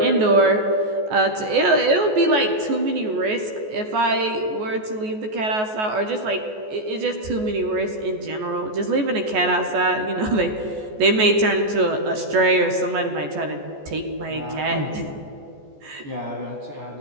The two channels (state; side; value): late; left; 14 ms